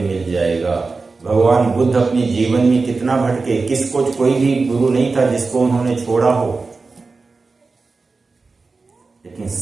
मिल जाएगा। भगवान बुद्ध अपने जीवन में कितना भटके, किसको कोई भी गुरु नहीं था जिसको उन्होंने छोड़ा हो, लेकिन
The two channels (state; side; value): quieter; left; 4.1 dB